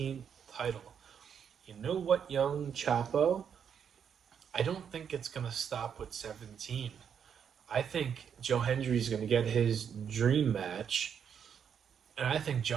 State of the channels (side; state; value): left; quieter; 7.7 dB